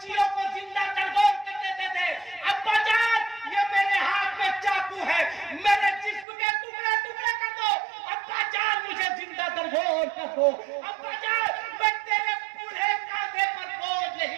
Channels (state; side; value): drops out; left; at 6.2 s